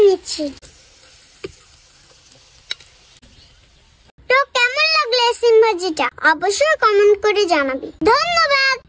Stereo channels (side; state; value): both; identical; correlation 1.00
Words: নিচ্ছি। তো কেমন লাগলো সিম ভাজিটা অবশ্যই কমেন্ট করে জানাবি। ধন্যবাদ।